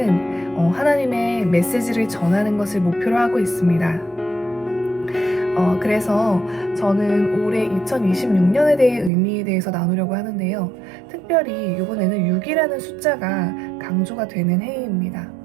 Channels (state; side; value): drops out; left; at 9.1 s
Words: 하나님의 메시지를 전하는 것을 목표로 하고 있습니다. 그래서 저는 올해 2026년에 대해 의미에 대해서 나누려고 하는데요. 특별히 이번에는 6이라는 숫자가 강조가 되는 해입니다.